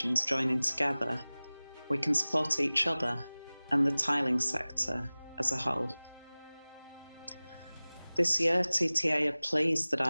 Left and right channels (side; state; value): both; inverted; correlation -0.99